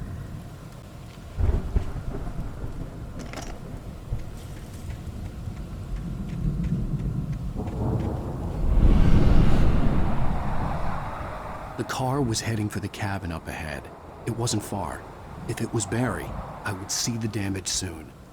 The car was heading for the cabin up ahead. It wasn't far. If it was Barry, I would see the damage soon.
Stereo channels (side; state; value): both; identical; correlation 1.00